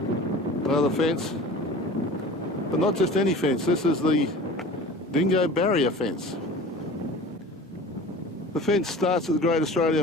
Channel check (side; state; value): both; normal; correlation 0.39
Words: another fence, but not just any fence. This is the dingo barrier fence. The fence starts at the Great